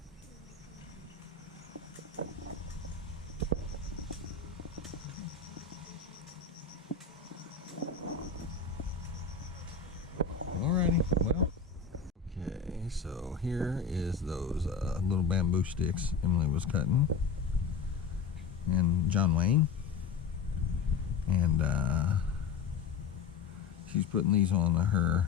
Alrighty, well, okay, so here is those little bamboo sticks Emily was cutting, and John Wayne, and she's putting these on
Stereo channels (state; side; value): quieter; right; 5.6 dB